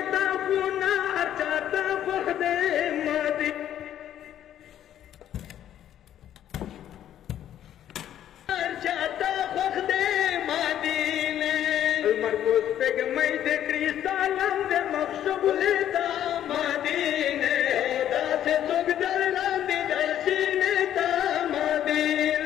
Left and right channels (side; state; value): right; quieter; 11.1 dB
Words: تاخونه چاته مخده مدینه چاته مخده مدینه المرکوز پگمی د کریستالم د مخشبولی دا مدینه داسې څوک در لاندې د سینې دا